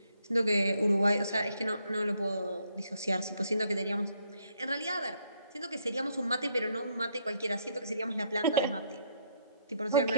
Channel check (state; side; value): inverted; both; correlation -0.72